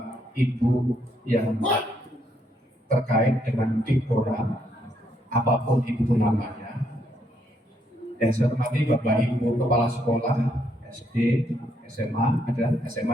Ibu yang terkait dengan Dipora, apapun itu namanya, yang saya hormati Bapak Ibu Kepala Sekolah SD, SMA, ada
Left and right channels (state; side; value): normal; both; correlation 0.74